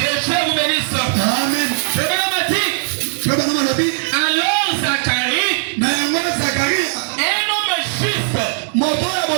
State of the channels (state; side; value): silent; left; digital silence